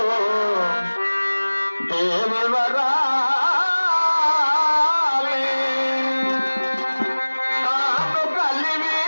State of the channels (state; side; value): inverted; both; correlation -1.00